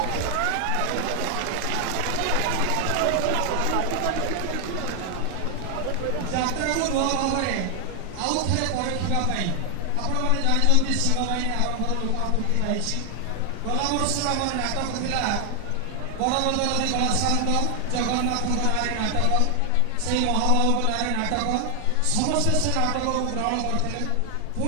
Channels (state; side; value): different; both; correlation 0.00